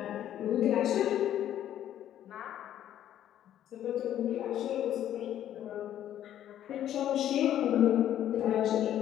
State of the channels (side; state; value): right; quieter; 11.3 dB